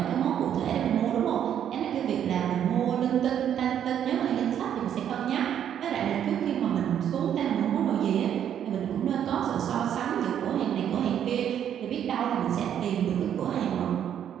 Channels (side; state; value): left; quieter; 9.6 dB